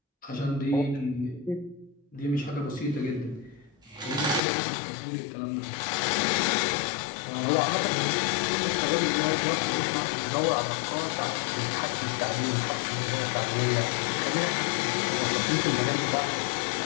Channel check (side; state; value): right; drops out; at 4.4 s